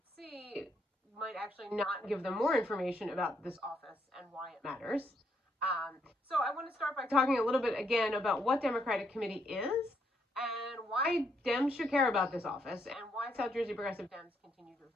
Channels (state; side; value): normal; both; correlation 0.75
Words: see might actually not give them more information about this office and why it matters. So I want to start by talking a little bit again about what Democratic Committee is and why Dems should care about this office and why South Jersey Progressive Dems continue to